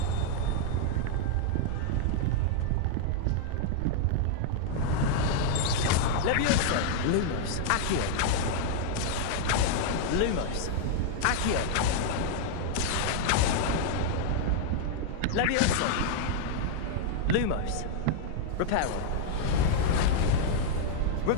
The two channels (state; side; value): different; both; correlation -0.01